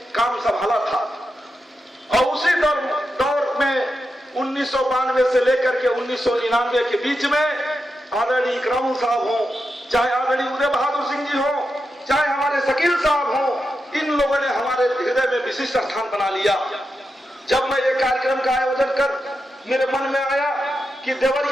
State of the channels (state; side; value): normal; both; correlation 0.88